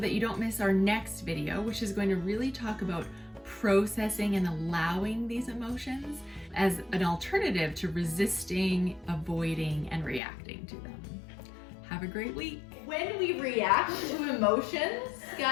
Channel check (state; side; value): drops out; right; at 10.2 s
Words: you don't miss our next video, which is going to really talk about processing and allowing these emotions as an alternative to resisting, avoiding, and reacting to them. Have have a great week. When we react to emotions,